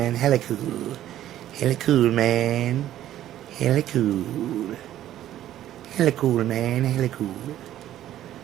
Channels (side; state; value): left; quieter; 12.5 dB